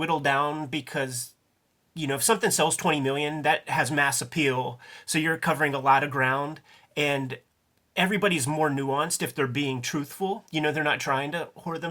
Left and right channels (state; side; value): identical; both; correlation 1.00